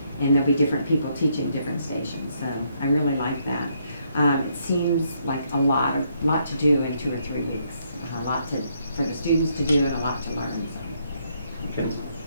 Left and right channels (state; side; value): inverted; both; correlation -0.73